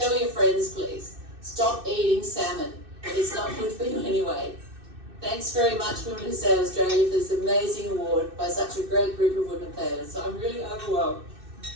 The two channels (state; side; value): late; left; 2.6 ms